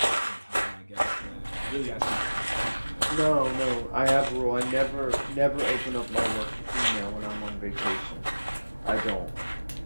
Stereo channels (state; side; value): inverted; both; correlation -1.00